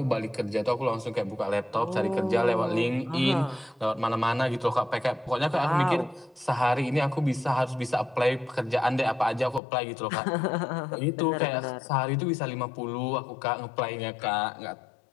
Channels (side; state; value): right; drops out; at 9.6 s